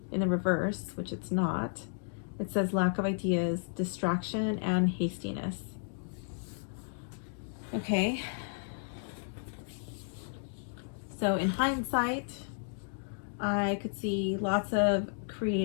In the reverse, which it's not, it says lack of ideas, distraction, and hastiness. Okay. So in hindsight, I could see lots of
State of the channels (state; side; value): silent; right; digital silence